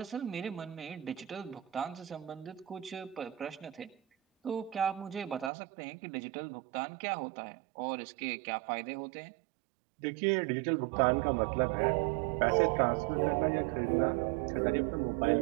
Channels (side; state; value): left; drops out; at 5.5 s